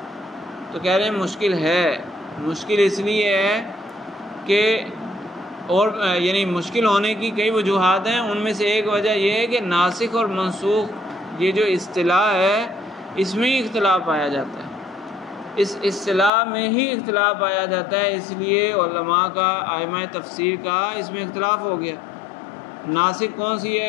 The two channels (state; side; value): drops out; right; at 16.3 s